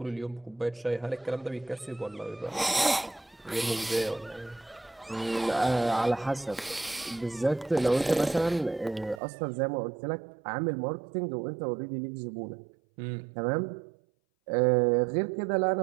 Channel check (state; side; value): drops out; left; at 9.2 s